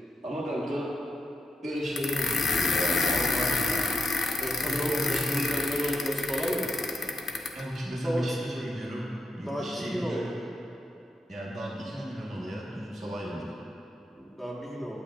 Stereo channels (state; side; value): normal; both; correlation 0.84